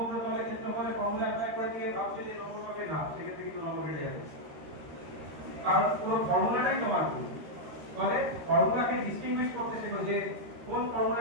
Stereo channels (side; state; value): left; late; 13 ms